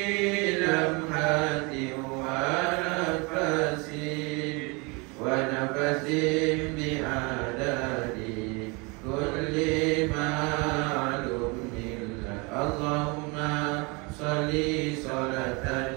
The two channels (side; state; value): left; quieter; 29.0 dB